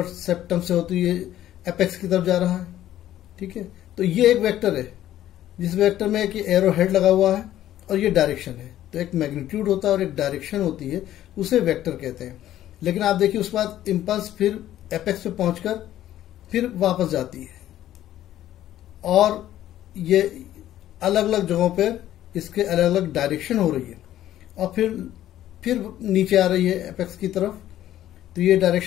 सेप्टम से होती है, एपेक्स की तरफ जा रहा है, ठीक है। तो ये एक वेक्टर है, जिस वेक्टर में एक एरो हेड लगा हुआ है और ये डायरेक्शन है। तो एक मैग्नीट्यूड होता है और एक डायरेक्शन होती है, उसे वेक्टर कहते हैं। लेकिन आप देखिए, उसके बाद इंपल्स फिर एपेक्स पे पहुंचकर फिर वापस जाती है, और ये अलग अलग जगहों पे इसके अलग अलग डायरेक्शन हो रही है, और फिर नीचे आ रही है एपेक्स की तरफ। तो ये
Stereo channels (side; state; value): right; quieter; 12.8 dB